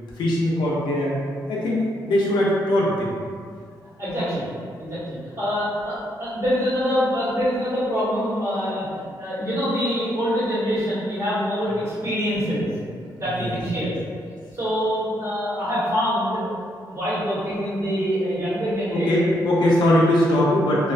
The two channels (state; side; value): normal; both; correlation 0.75